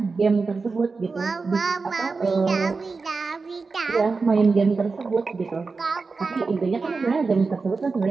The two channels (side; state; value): left; quieter; 4.3 dB